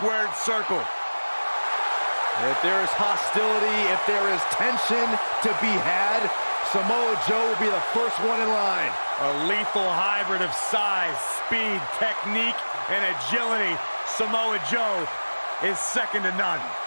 circle. If there is hostility, if there is tension to be had, Samoa Joe will be the first one in line. A lethal hybrid of size, speed, technique, and agility. Samoa Joe is second to none.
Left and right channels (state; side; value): inverted; both; correlation -1.00